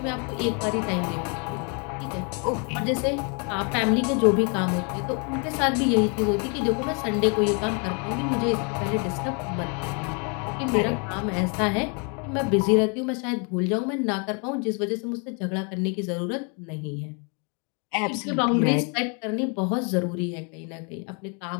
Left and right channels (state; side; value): quieter; right; 36.2 dB